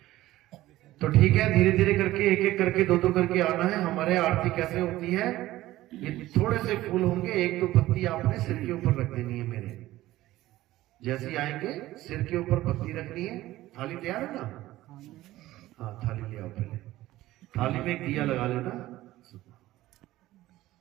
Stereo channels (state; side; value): quieter; left; 16.1 dB